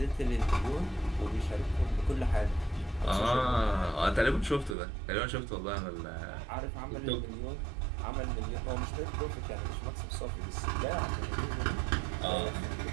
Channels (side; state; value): left; drops out; at 4.8 s